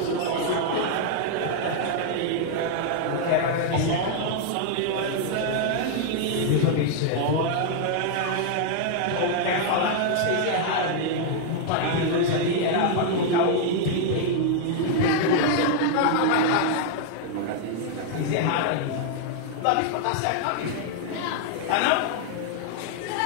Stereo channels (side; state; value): both; different; correlation 0.00